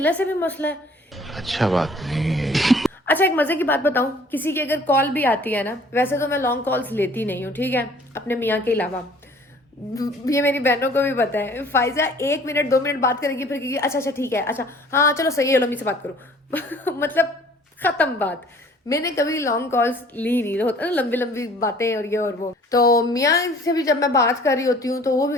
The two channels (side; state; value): both; normal; correlation 0.53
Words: से भी मसला है। अच्छा बात नहीं है। अच्छा एक मजे की बात बताऊं, किसी की अगर कॉल भी आती है ना, वैसे तो मैं लॉन्ग कॉल्स लेती नहीं हूँ, ठीक है, अपने मियाँ के अलावा। ये मेरी बहनों को भी पता है। फाइजा 1 मिनट 2 मिनट बात करेगी फिर कहेगी अच्छा अच्छा ठीक है, अच्छा हाँ चलो सही है, लो मम्मी से बात करो। मतलब खत्म बात। मैंने कभी लॉन्ग कॉल्स ली नहीं, होता ना लंबी लंबी बातें और ये और वो। तो मियाँ से भी जब मैं बात कर रही होती हूँ तो वो भी